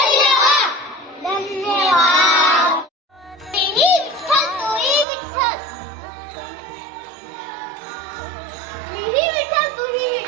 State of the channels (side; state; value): left; drops out; at 5.1 s